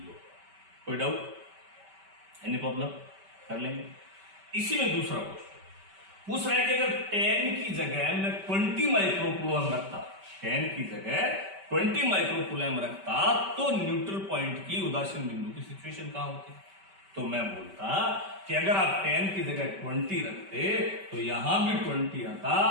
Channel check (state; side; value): late; left; 5.2 ms